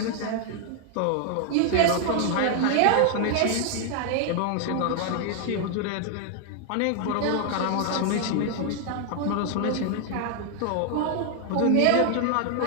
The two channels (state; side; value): different; both; correlation 0.00